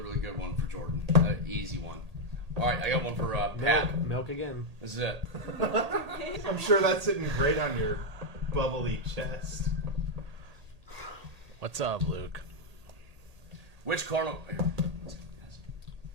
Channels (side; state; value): left; late; 1.8 ms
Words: really good one for Jordan. An easy one. All right, I got one for Pat. Milk again. This is it. I'm sure that's sitting great on your bubbly chest. What's up, Luke? Which Cardinal? Here.